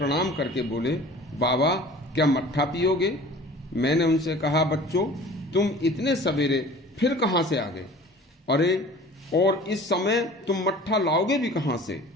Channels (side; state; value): both; normal; correlation 0.45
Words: करके बोले, बाबा, क्या मट्ठा पियोगे? मैंने उनसे कहा, बच्चों, तुम इतने सवेरे फिर कहां से आ गए? अरे, और इस समय तुम मट्ठा लाओगे भी कहां से?